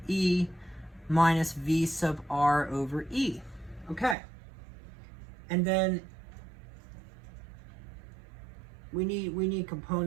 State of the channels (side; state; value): left; drops out; at 4.2 s